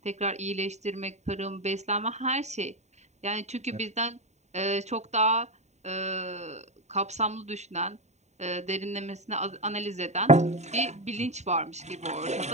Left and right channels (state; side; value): late; left; 0.33 ms